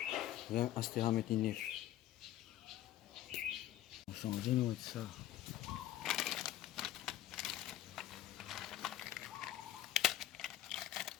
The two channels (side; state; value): right; quieter; 12.6 dB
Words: Rien astera metinif. Sans dire ça.